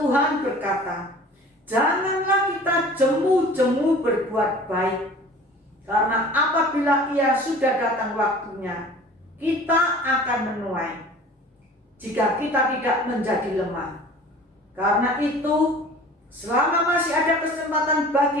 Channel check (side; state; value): both; normal; correlation 0.44